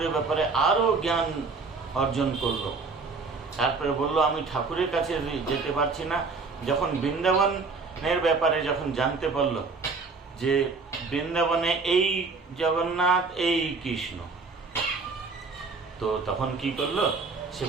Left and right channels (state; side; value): quieter; left; 4.3 dB